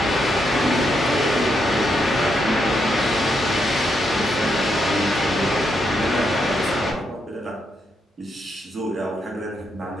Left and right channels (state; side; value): normal; both; correlation 0.80